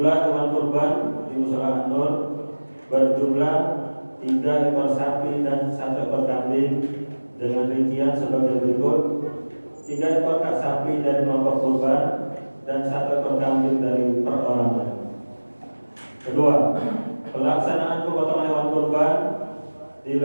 hewan kurban di Mushola An-Nur berjumlah 3 ekor sapi dan 1 ekor kambing dengan rincian sebagai berikut: 3 ekor sapi dari kelompok kurban dan 1 ekor kambing dari perorangan. Kedua, pelaksanaan pemotongan hewan kurban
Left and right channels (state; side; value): inverted; both; correlation -1.00